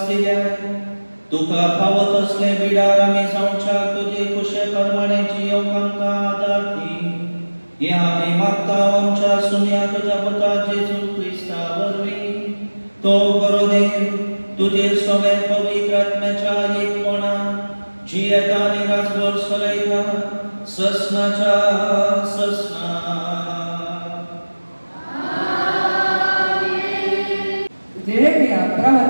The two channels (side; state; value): both; inverted; correlation -1.00